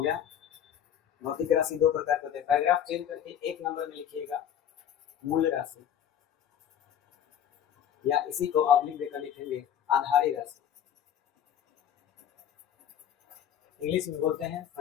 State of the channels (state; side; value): quieter; right; 9.5 dB